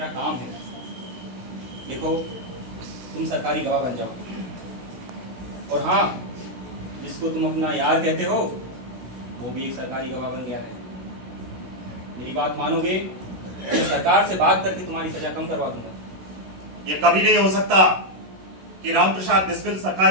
काम है। देखो, तुम सरकारी गवाह बन जाओ, और हाँ, जिसको तुम अपना यार कहते हो वो भी एक सरकारी गवाह बन गया है। मेरी बात मानोगे तो सरकार से बात करके तुम्हारी सजा कम करवा दूंगा। ये कभी नहीं हो सकता कि राम प्रसाद बिस्मिल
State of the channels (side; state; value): left; late; 16 ms